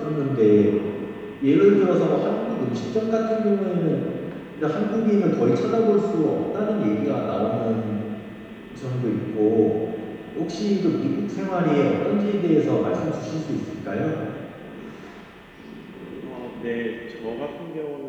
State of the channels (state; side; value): identical; both; correlation 1.00